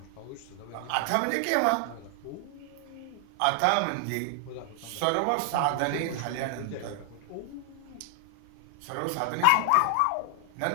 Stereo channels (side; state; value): both; different; correlation 0.00